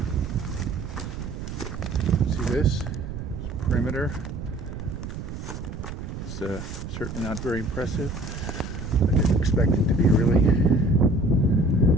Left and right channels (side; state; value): right; noise; rumble, 8 dB below the sound